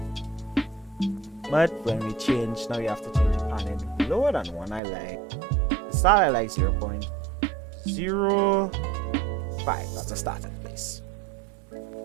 But when we change, now you have to change the panning lower than 1. I like the start. I like 0.05. That's a starting place.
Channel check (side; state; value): left; drops out; at 4.8 s